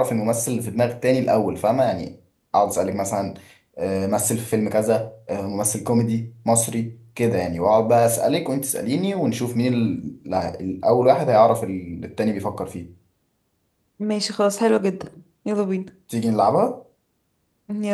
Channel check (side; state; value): both; identical; correlation 1.00